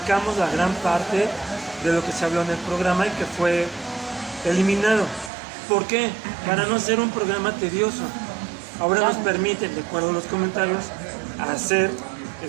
la gran parte de lo que se habló en el programa y que fue eliminado. ¿Por qué? Para no hacer un programa tedioso. Ahora nos permiten, de acuerdo a los comentarios, hacer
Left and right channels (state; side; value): drops out; left; at 5.3 s